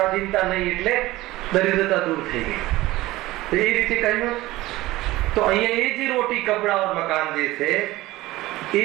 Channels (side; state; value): left; quieter; 18.0 dB